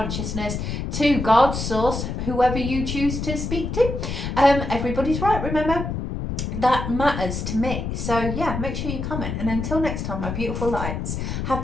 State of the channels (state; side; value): noise; left; rumble, 4 dB below the sound